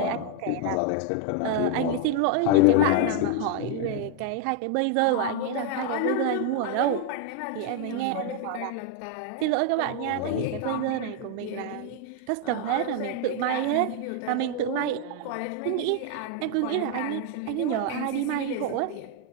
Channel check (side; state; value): both; different; correlation 0.00